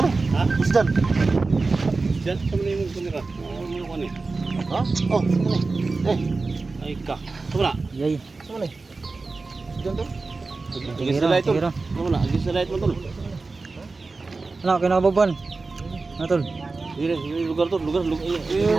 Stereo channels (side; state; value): left; quieter; 3.8 dB